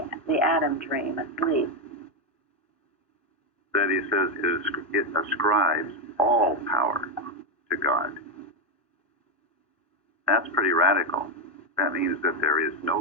Adam dream, asleep. That he says it ascribes all power to God. That's pretty radical. That means that there is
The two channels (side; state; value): both; normal; correlation 0.06